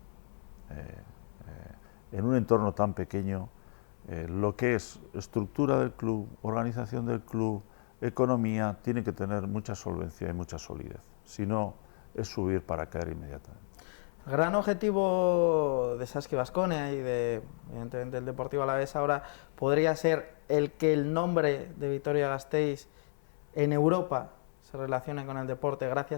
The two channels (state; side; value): silent; right; 56 dB below the other